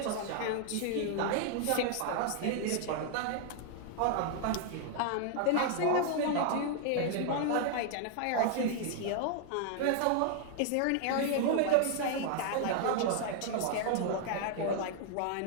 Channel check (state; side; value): different; both; correlation 0.00